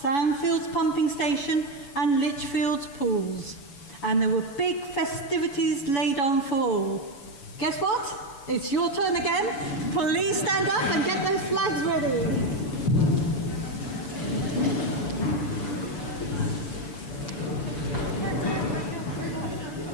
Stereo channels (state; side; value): late; right; 7.1 ms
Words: Sandfields Pumping Station, and Lichfield's pools. And there were big festivities laid on for all. Guess what? It's your turn again. Please stand up and get those flags ready.